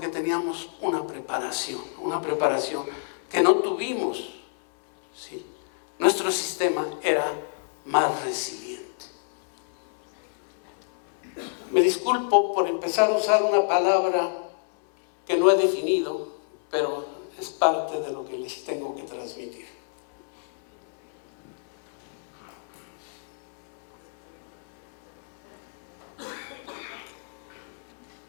teníamos una preparación que no tuvimos, ¿sí? Nuestro sistema era más resiliente. Me disculpo por empezar a usar una palabra que no he definido, pero es parte de lo que les tengo que transmitir.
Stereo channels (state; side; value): silent; right; 60 dB below the other